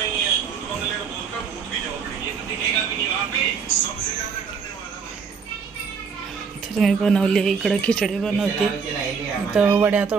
मी बनवली इकडं खिचडी बनवते. इथं वड्या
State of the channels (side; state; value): left; quieter; 5.9 dB